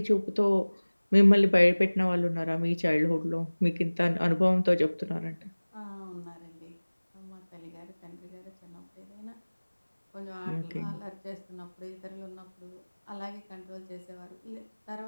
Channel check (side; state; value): both; inverted; correlation -1.00